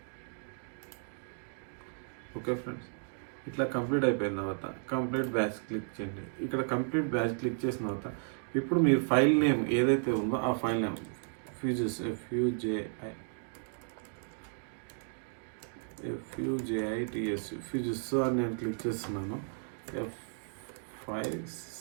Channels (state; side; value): silent; left; 55 dB below the other